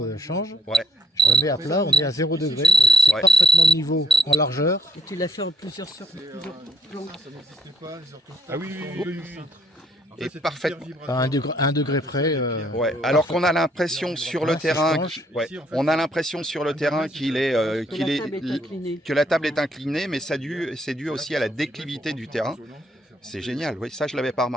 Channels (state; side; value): normal; both; correlation 0.65